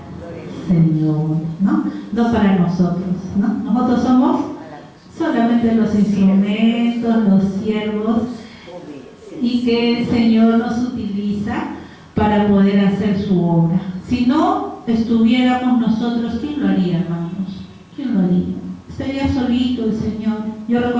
Señor, ¿no? No para nosotros, ¿no? Nosotros somos solamente los instrumentos, los siervos, y que el Señor nos utiliza para poder hacer su obra. Si no estuviéramos nosotros, ¿quién lo haría, hermanos? ¿Quién lo haría? Estaría solito el Señor. Yo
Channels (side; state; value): both; identical; correlation 1.00